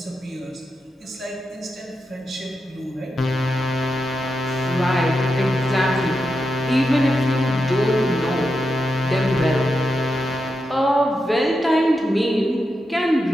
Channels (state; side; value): normal; both; correlation 0.87